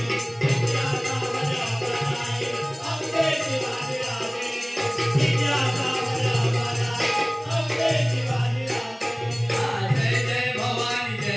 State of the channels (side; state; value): both; identical; correlation 1.00